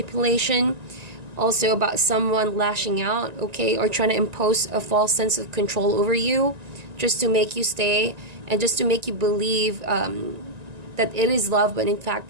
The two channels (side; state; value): left; late; 1.9 ms